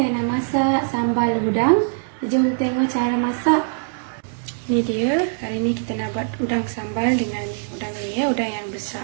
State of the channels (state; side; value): silent; left; digital silence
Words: nak masak sambal udang. Jom tengok cara masak. Ni dia. Hari ni kita nak buat udang sambal dengan udang ni ya, udang yang